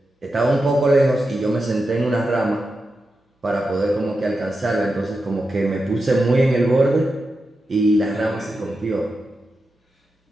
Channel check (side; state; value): both; normal; correlation 0.89